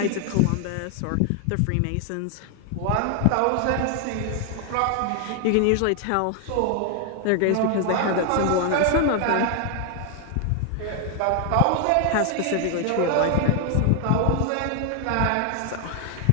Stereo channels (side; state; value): both; different; correlation 0.00